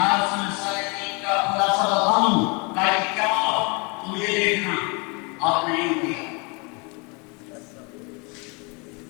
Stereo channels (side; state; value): right; quieter; 31.3 dB